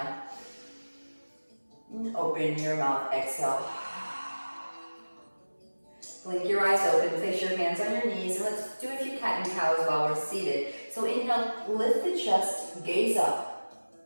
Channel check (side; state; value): both; inverted; correlation -1.00